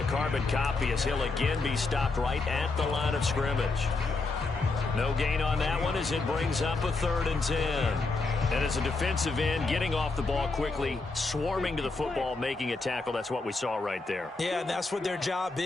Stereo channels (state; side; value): quieter; right; 3.6 dB